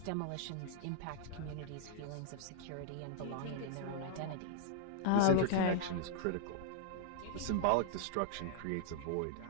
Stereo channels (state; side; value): different; both; correlation -0.01